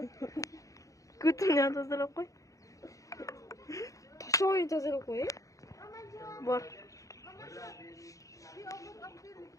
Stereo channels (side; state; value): right; late; 0.16 ms